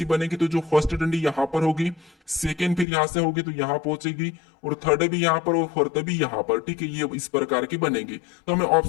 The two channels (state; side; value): drops out; right; at 2.9 s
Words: बनेगी, तो जो फर्स्ट डंडी यहाँ पर होगी, सेकेंड फिर यहाँ से होगी तो यहाँ पहुंचेगी, और थर्ड भी यहाँ पर और फोर्थ भी यहाँ पर, ठीक है, ये इस प्रकार की बनेगी। तो हमें